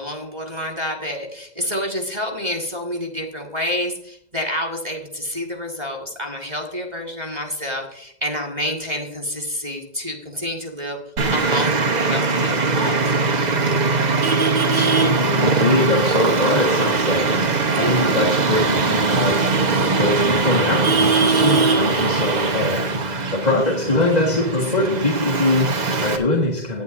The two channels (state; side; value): late; left; 2.0 ms